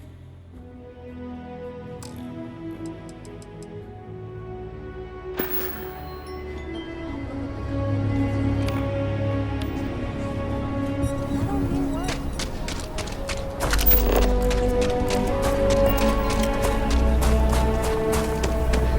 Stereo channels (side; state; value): both; identical; correlation 1.00